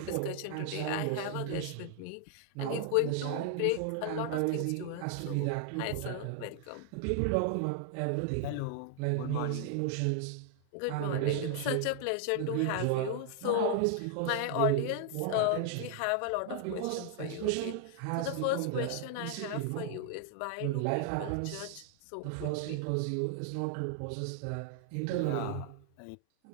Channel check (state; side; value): different; both; correlation 0.00